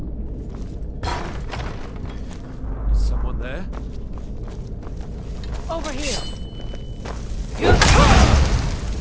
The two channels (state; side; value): identical; both; correlation 1.00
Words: Is someone there? Over here!